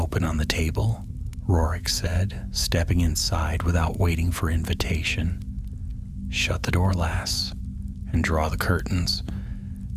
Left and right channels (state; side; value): identical; both; correlation 1.00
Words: on the table," Rorik said, stepping inside without waiting for invitation. "Shut the door, lass, and draw the curtains.